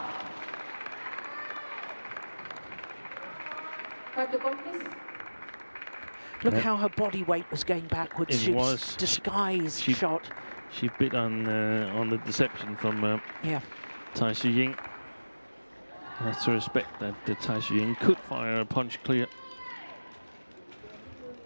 Cut the ball, please. Look how her body weight was going backwards. She was disguised shot. She bit on the deception from Tai Tzu Ying. Has to respect that Tai Tzu Ying could fire a punch clear.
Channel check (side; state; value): both; inverted; correlation -1.00